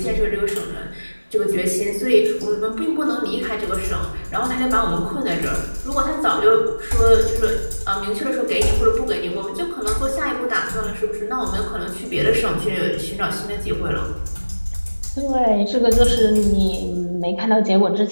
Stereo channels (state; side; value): inverted; both; correlation -1.00